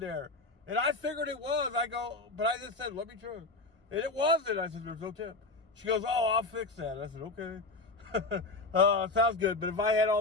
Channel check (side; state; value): right; quieter; 3.3 dB